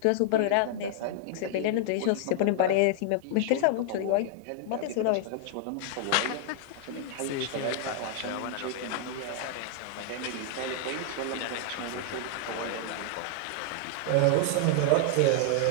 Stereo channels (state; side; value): different; both; correlation 0.00